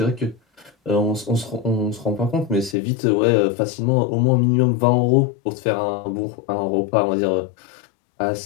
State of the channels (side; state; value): right; drops out; at 2.8 s